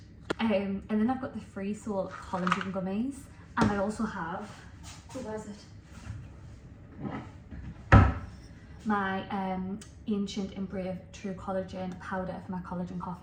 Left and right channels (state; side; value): identical; both; correlation 1.00